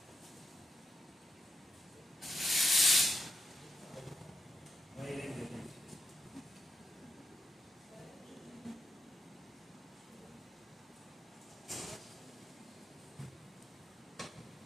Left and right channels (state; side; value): normal; both; correlation 0.85